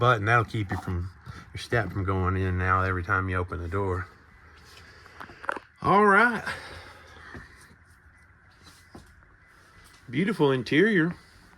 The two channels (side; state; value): both; identical; correlation 1.00